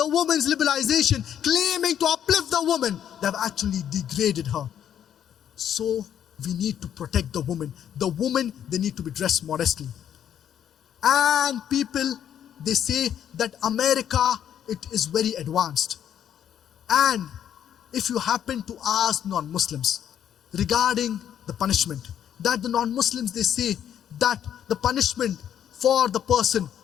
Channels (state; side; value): quieter; right; 9.7 dB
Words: woman's liberalization, claiming to uplift the woman, they have actually degraded her. So we need to protect the woman. The woman, they need to be dressed modestly. And people, they say that America, it is very advanced. And if you happen to ask non-Muslims regarding the punishment, that the non-Muslims, they say that the punishment for the person